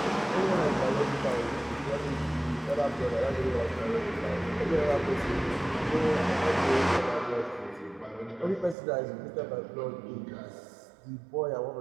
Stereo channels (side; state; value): left; drops out; at 8.8 s